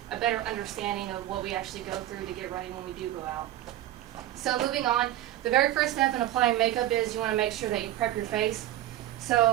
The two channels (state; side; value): quieter; left; 13.6 dB